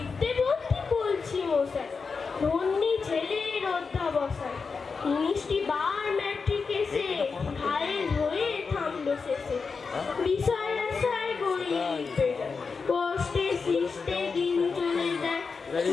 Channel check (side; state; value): right; quieter; 5.0 dB